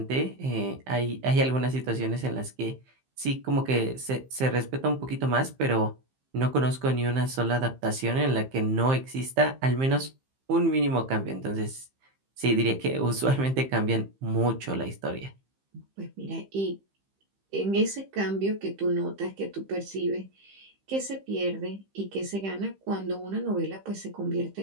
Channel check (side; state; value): left; late; 15 ms